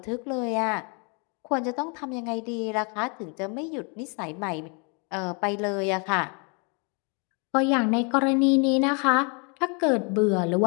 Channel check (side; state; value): right; quieter; 35.0 dB